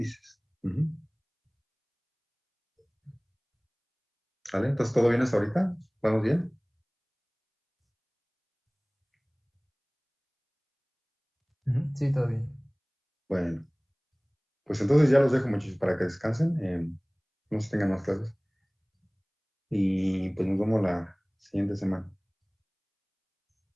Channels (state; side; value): identical; both; correlation 1.00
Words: Ujú. ¿Vale? Entonces, ¿todo bien hasta ahorita? ¿Vamos bien? Ujú, sí, todo bien. Bueno, pues entonces ya los dejo muchachos para que descansen, no se tengan más clases y pues nos vemos la siguiente semana.